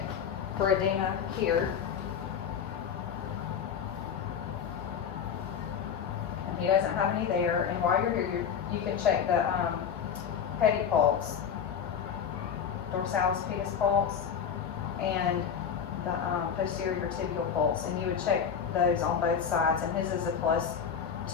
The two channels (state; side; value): quieter; right; 7.5 dB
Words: for edema here. And he doesn't have any there. And while you're here, you can check the pedipulse, dorsalis pedis pulse, and the posterior tibial pulse. And you would check those on both sides. And his is a